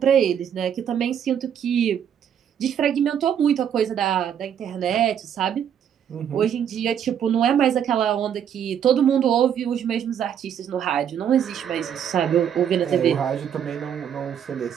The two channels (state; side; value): quieter; left; 8.8 dB